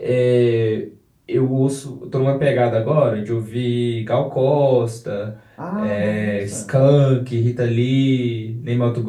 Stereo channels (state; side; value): identical; both; correlation 1.00